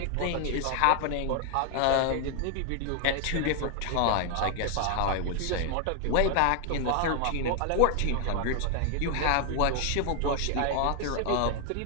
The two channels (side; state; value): both; different; correlation 0.00